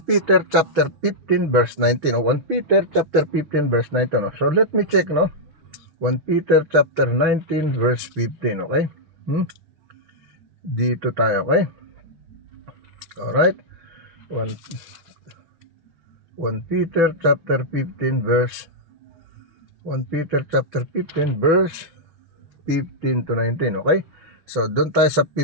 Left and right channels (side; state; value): left; late; 6.1 ms